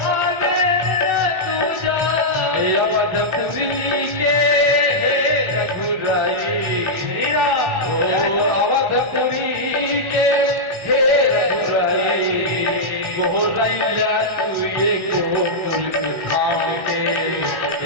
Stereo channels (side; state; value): left; late; 1.4 ms